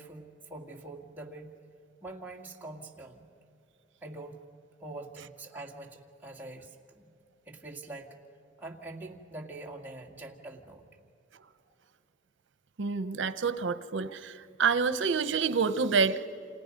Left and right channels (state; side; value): quieter; left; 4.8 dB